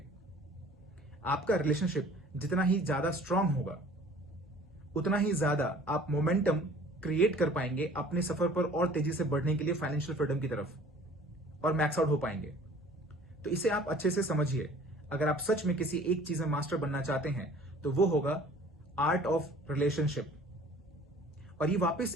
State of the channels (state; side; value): normal; both; correlation 0.50